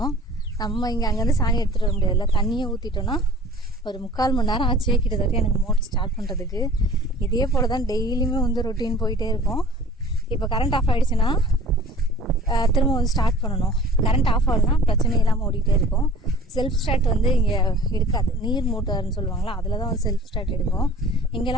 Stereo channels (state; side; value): normal; both; correlation 0.46